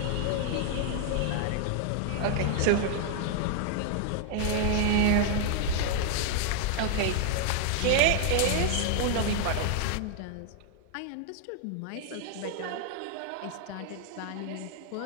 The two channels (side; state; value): both; different; correlation 0.00